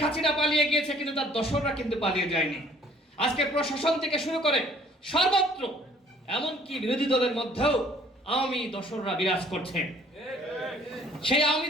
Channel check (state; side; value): normal; both; correlation 0.58